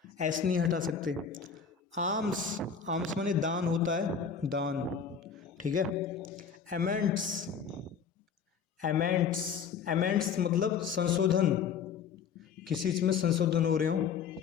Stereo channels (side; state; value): right; quieter; 6.6 dB